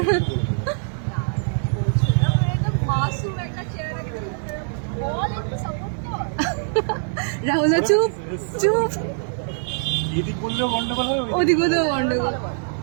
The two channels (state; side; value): silent; left; digital silence